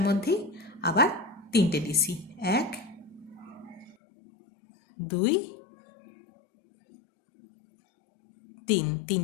মধ্যেই আবার 3টে ডিসি। 1 2 3,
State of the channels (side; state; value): right; drops out; at 4.0 s